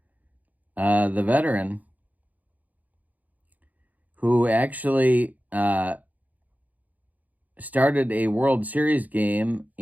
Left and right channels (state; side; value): late; left; 0.079 ms